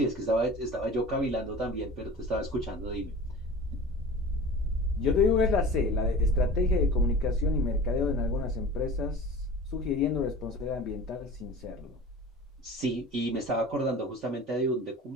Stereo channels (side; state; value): both; normal; correlation 0.38